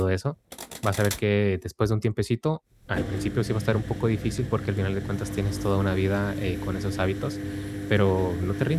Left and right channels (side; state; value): both; identical; correlation 1.00